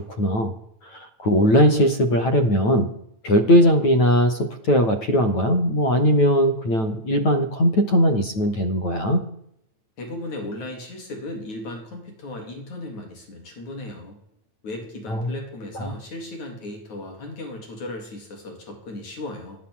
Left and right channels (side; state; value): right; late; 9.1 ms